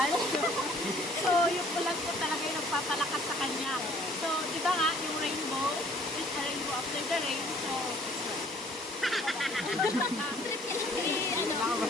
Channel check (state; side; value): normal; both; correlation 0.57